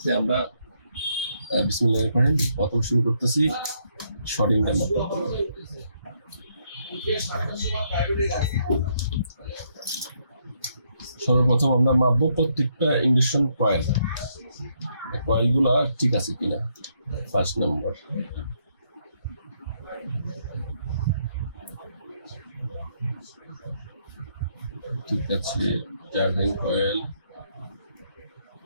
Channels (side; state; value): both; inverted; correlation -0.74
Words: আমরা বিসমিল্লাহির রহমানির রহিম প্রথম শুরু করতেছি শর্টিংটা মাত্র। সর্বপ্রথম আমরা মাপবো প্রত্যেকটা ইন্ডাকশন কয়েলগুলা ঠিক আছে কিনা। ফার্স্ট নাম্বার ঠিক আছে, চার্জিং কয়েল